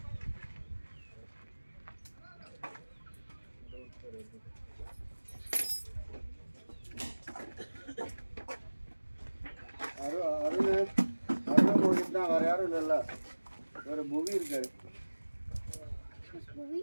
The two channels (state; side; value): inverted; both; correlation -1.00